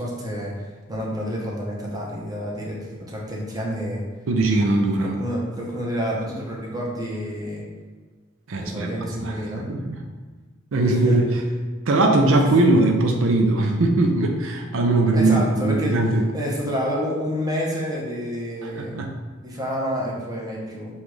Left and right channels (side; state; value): both; normal; correlation 0.55